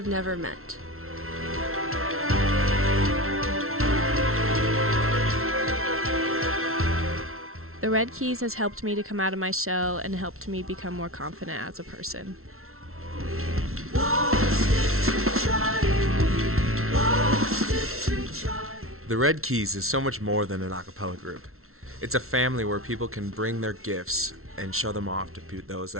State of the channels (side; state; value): left; late; 0.62 ms